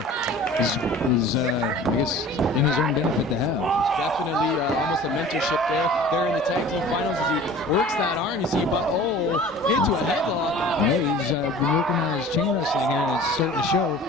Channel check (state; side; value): normal; both; correlation 0.43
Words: is I guess, in his own benefit to have. Definitely almost a mentorship there. They're in the tag team finals as he works that arm. You see, but into a headlock. Yeah, he's been working on his chain wrestling here, and it's starting to show.